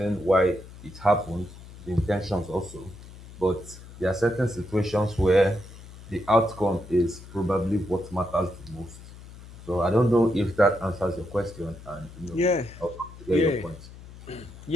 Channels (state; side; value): noise; left; hum, 17 dB below the sound